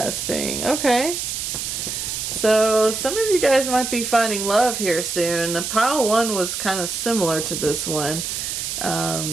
Okay. So some of you guys might be finding love here soon. The pile 1 was kind of similar to this one.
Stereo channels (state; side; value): noise; right; hiss, 4 dB below the sound